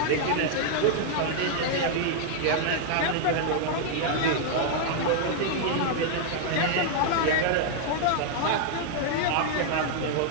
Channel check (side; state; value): both; different; correlation 0.00